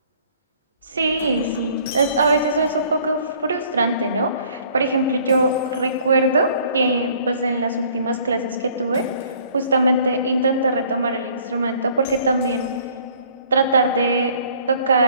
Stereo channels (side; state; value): both; inverted; correlation -0.57